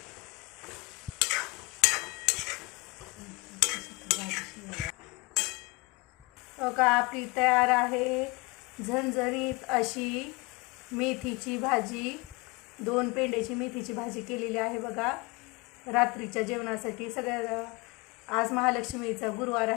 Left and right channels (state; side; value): quieter; right; 25.6 dB